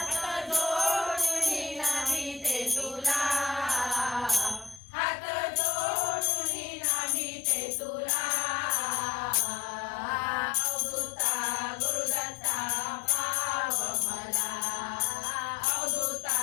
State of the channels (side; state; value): right; drops out; at 4.8 s